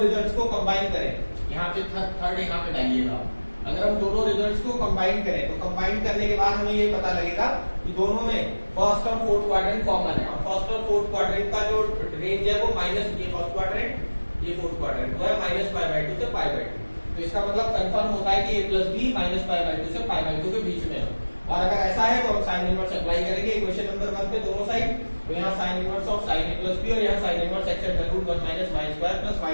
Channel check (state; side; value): inverted; both; correlation -1.00